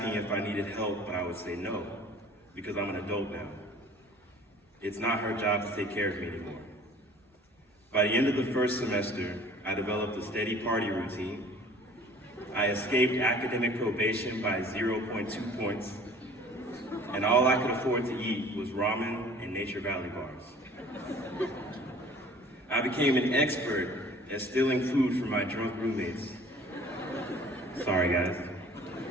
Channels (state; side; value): normal; both; correlation 0.49